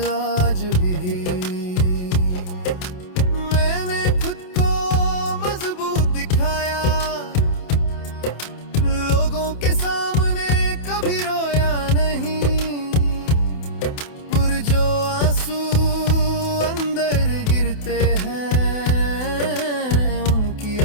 आज भी। मैंने खुद को मजबूत दिखाया, लोगों के सामने कभी रोया नहीं, पर जो आंसू अंदर गिरते हैं उनकी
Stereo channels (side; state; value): right; late; 28 ms